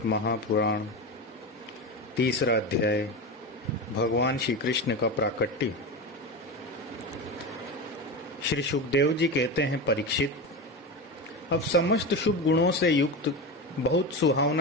महापुराण तीसरा अध्याय। भगवान श्री कृष्ण का प्राकट्य। श्री सुखदेव जी कहते हैं, परीक्षित, अब समस्त शुभ गुणों से युक्त बहुत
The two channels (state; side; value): normal; both; correlation 0.21